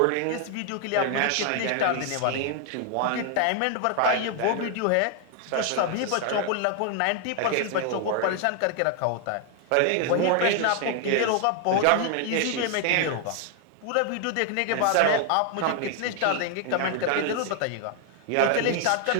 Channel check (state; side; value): different; both; correlation 0.00